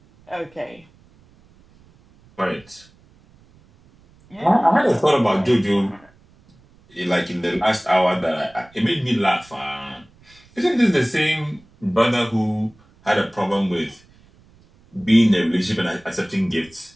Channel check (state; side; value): noise; right; rumble, 29 dB below the sound